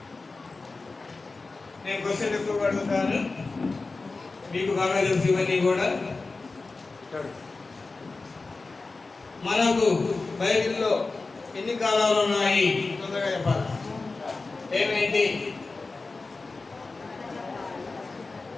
నేను క్వశ్చన్ ఎక్కువ అడుగుతాను, మీకు బాగా తెలుసు ఇవన్నీ కూడా. మనకు బైబిల్లో ఎన్ని కాలాలు ఉన్నాయి తొందరగా చెప్పాలి. ఏమైంది?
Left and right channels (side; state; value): right; quieter; 3.7 dB